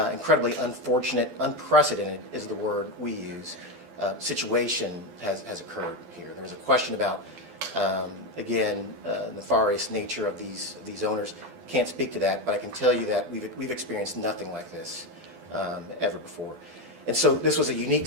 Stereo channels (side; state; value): left; late; 12 ms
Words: incredibly unfortunate, unprecedented is the word we use, situation has occurred here. There's a question about, nefarious nature of these owners. Can't speak to that, but I can tell you that we've experienced nothing like this ever before. And so this was a unique